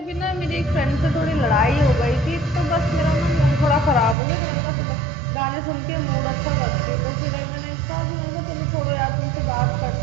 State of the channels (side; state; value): left; drops out; at 4.2 s